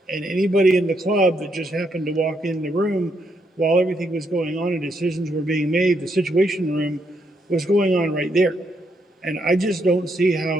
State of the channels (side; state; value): both; normal; correlation 0.77